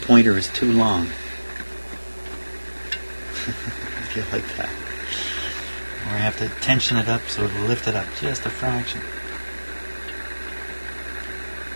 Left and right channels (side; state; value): both; inverted; correlation -1.00